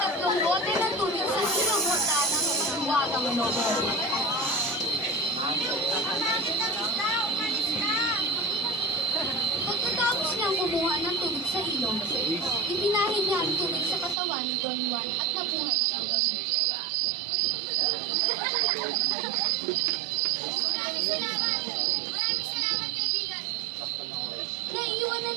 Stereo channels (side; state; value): left; drops out; at 14.2 s